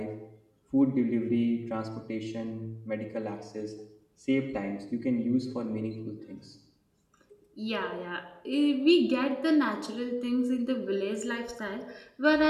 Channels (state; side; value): identical; both; correlation 1.00